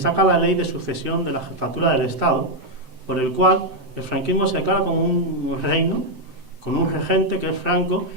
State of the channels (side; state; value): left; late; 7.8 ms